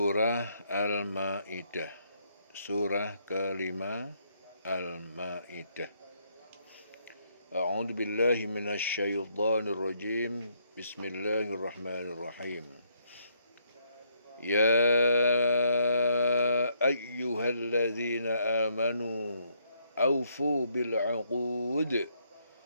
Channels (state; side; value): inverted; both; correlation -0.72